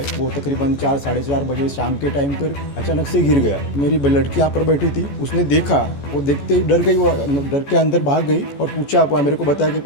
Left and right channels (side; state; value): right; late; 14 ms